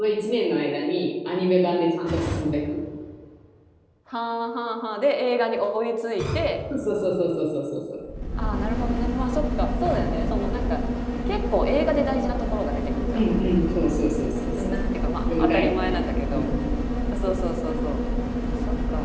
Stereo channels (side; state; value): both; identical; correlation 1.00